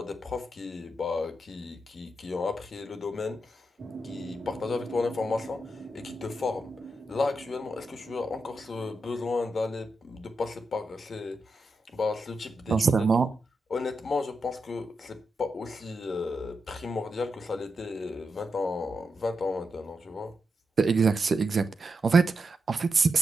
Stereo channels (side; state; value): both; normal; correlation 0.86